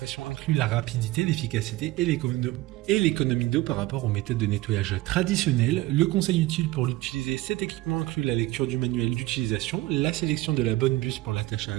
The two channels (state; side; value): quieter; left; 18.0 dB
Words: incluent la rapidité, l'efficacité et l'économie d'eau par rapport aux méthodes de nettoyage traditionnelles. Le conseil utile pour utiliser cet équipement inclut la lecture du manuel d'utilisation, la sélection de la bonne buse pour la tâche à